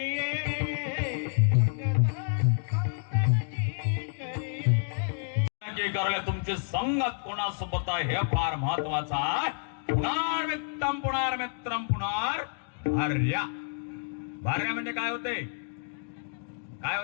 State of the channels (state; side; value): silent; right; digital silence